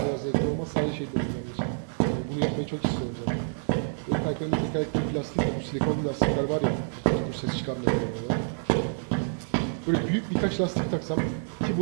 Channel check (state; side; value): silent; left; digital silence